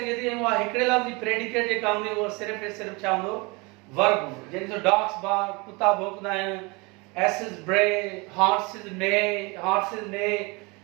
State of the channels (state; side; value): quieter; left; 27.3 dB